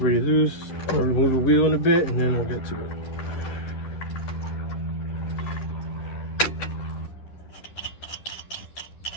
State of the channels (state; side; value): late; right; 10 ms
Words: loose. I'm going to remove the wheel in a bit and then we'll get to it.